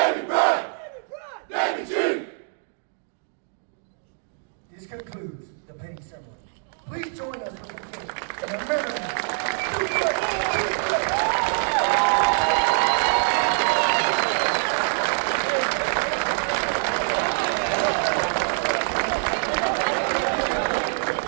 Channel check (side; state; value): left; silent; digital silence